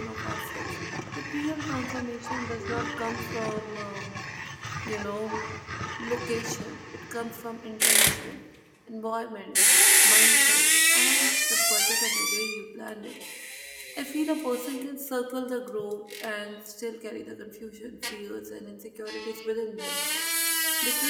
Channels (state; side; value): identical; both; correlation 1.00